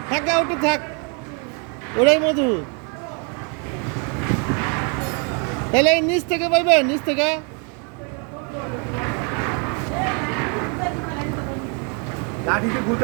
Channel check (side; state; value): left; quieter; 36.8 dB